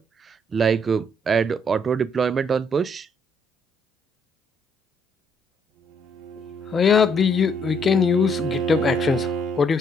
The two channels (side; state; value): both; normal; correlation 0.69